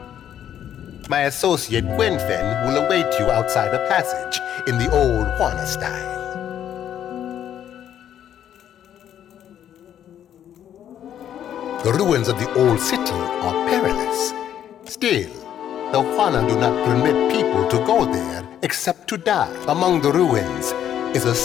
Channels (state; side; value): quieter; right; 10.2 dB